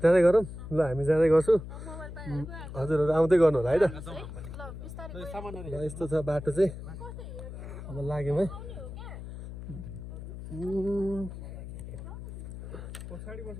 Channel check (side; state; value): left; noise; hum, 10 dB below the sound